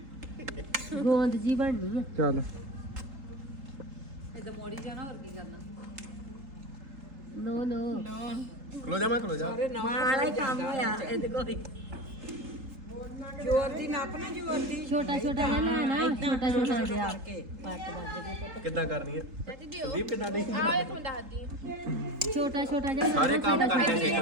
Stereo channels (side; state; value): left; late; 4.0 ms